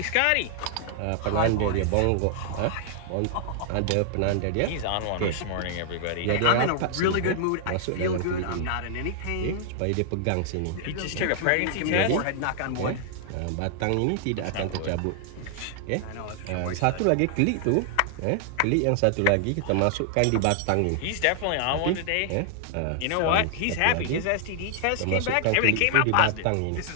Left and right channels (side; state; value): both; different; correlation -0.01